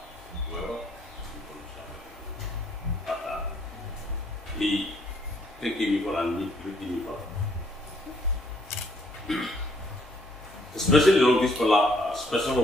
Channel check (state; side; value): normal; both; correlation 0.67